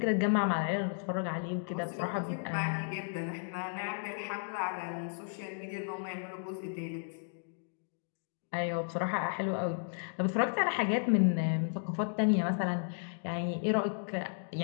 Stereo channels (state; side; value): silent; right; digital silence